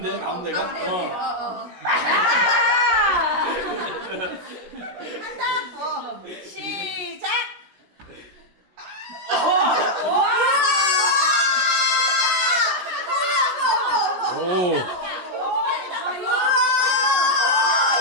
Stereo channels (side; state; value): left; late; 17 ms